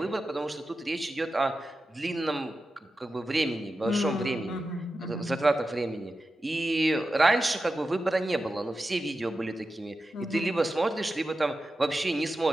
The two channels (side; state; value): both; normal; correlation 0.92